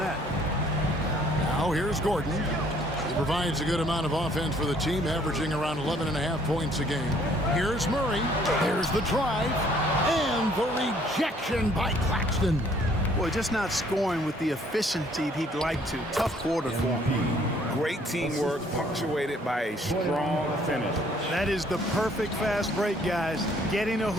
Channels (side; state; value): both; normal; correlation 0.61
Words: Now here's Gordon. He provides a good amount of offense for the team, averaging around 11.5 points a game. Here's Murray. Here's the drive. And the rejection by Claxton. Boy, just not scoring with the efficiency he'd like to. Tough quarter for him. Great teamwork, punctuated by a strong finish. That is the perfect fast break, guys. Getting a